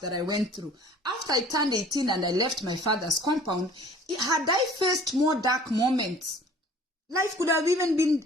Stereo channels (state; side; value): normal; both; correlation 0.49